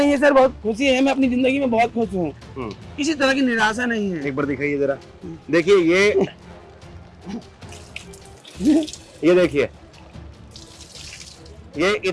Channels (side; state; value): both; identical; correlation 1.00